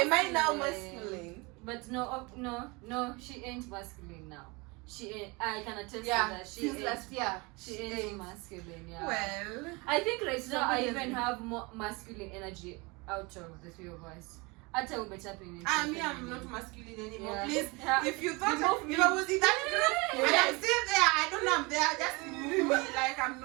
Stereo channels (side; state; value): left; quieter; 26.6 dB